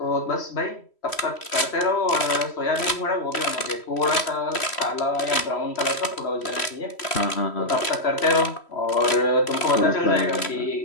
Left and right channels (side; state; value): right; late; 3.1 ms